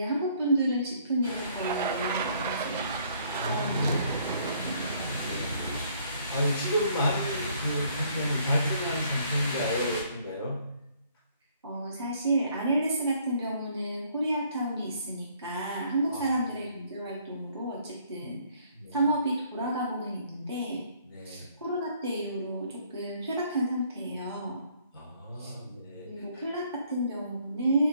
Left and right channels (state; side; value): inverted; both; correlation -0.64